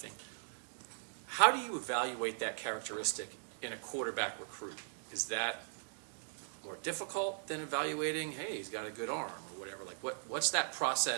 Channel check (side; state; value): left; silent; digital silence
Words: How do you evaluate that characteristic in a quarterback recruit? Is that more difficult than evaluating, hey, he's got a good arm or whatever? Like, what's that